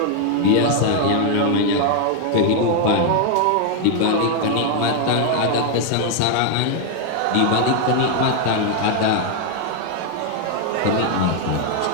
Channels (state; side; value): different; both; correlation 0.00